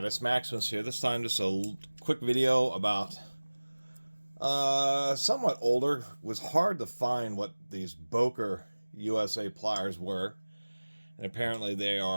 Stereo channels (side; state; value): both; inverted; correlation -1.00